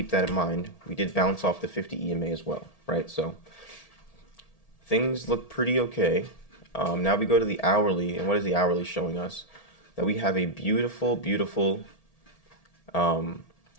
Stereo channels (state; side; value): late; right; 1.7 ms